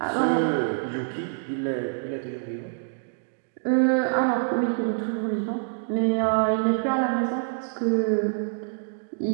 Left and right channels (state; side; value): silent; left; digital silence